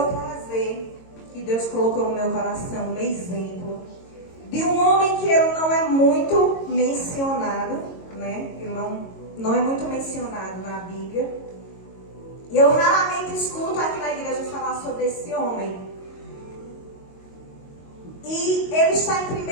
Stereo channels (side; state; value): right; late; 22 ms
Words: trazer, que Deus colocou no meu coração, um exemplo de um homem que ele não é muito mencionado, né? Ele não é muito mencionado na Bíblia. E eu raramente escuto aqui na igreja falar sobre esse homem. E ele está em